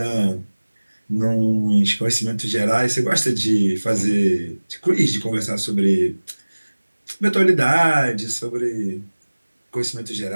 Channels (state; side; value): inverted; both; correlation -1.00